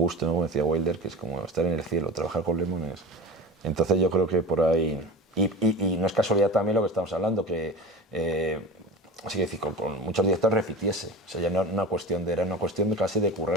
¿no? Como decía Wilder, que es como estar en el cielo, trabajar con Lemmon es... Entonces yo creo que por ahí... Y no es casualidad también lo que estamos hablando, que así que decir, con muchos directores repitiese. O sea, ya no era una cuestión de casi de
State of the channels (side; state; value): both; normal; correlation 0.31